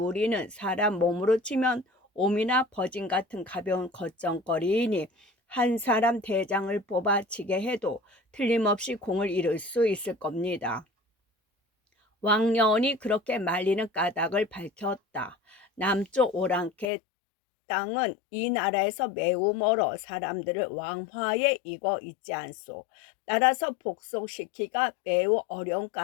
사람 몸으로 치면 옴이나 버진 같은 가벼운 겉정거리이니 한 사람 대장을 뽑아치게 해도 틀림없이 공을 이룰 수 있을 겁니다. 왕년이 그렇게 말리는 까닭을 밝혔다. 남쪽 오랑캐 땅은 이 나라에서 매우 멀어 사람들을 왕화에 익어 있지 않소. 따라서 복속시키기가 매우 어려운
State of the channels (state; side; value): drops out; right; at 16.9 s